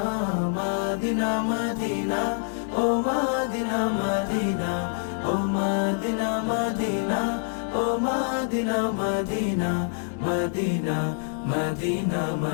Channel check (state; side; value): silent; right; 61 dB below the other